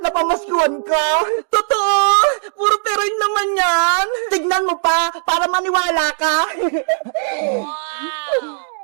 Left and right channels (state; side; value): silent; left; 68 dB below the other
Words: na pamaskuhan ko. Totoo! Puro pera yun naman yan! Tignan mo pa, para maniwala ka. Wow!